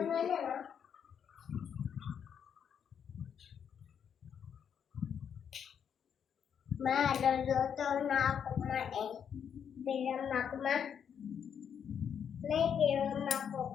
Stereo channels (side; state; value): right; quieter; 7.9 dB